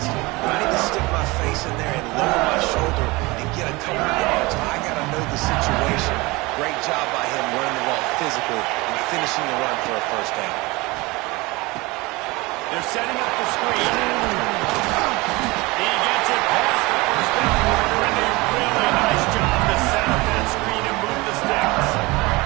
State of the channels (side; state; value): left; quieter; 23.2 dB